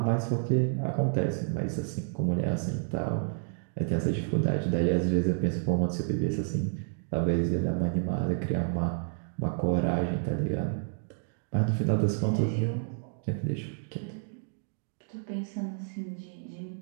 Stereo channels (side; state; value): left; silent; digital silence